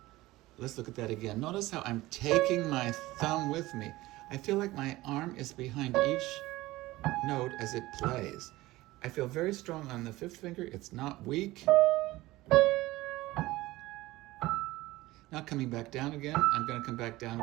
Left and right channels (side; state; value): left; quieter; 18.4 dB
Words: Let's look at that again. Notice how I'm taking my thumb with me. I feel like my arm is behind each note as it plays. I feel very strong on the 5th finger. It's not weak. Now coming back down again, I'm going to come back